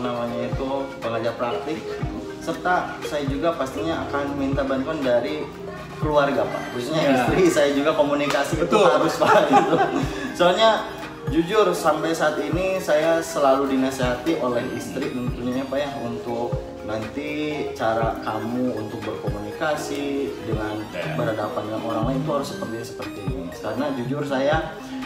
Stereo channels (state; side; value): identical; both; correlation 1.00